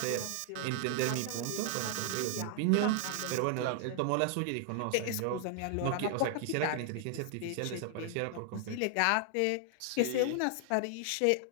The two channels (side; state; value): both; different; correlation 0.00